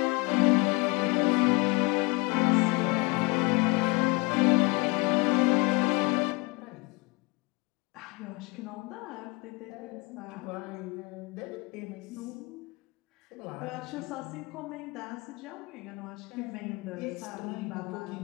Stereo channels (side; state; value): right; quieter; 27.5 dB